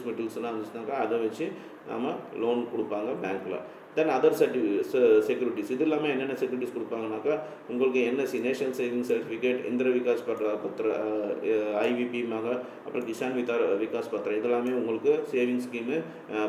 மெட்டீரியல்ஸ்லாம் இருந்துச்சுனாக்கா அதை வச்சு நம்ம லோன் கொடுப்பாங்க பேங்க்கில். Then other securities. இது இல்லாமல் என்னென்ன செக்யூரிட்டிஸ் கொடுப்பாங்கனாக்கா, உங்களுக்கு என்எஸ்சி, நேஷனல் சேவிங் சர்டிஃபிகேட், இந்திர விகாஸ் பத்திர, ஐவிபி அப்புறம் கிசான் விகாஸ் பத்திரம், இதெல்லாமே உங்களுக்கு சேவிங் ஸ்கீமு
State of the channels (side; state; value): both; identical; correlation 1.00